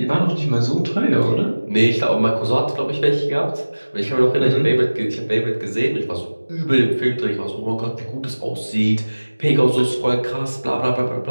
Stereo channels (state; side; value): inverted; both; correlation -1.00